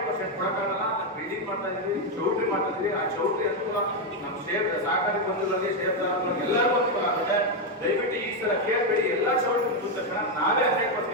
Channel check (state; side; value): normal; both; correlation 0.04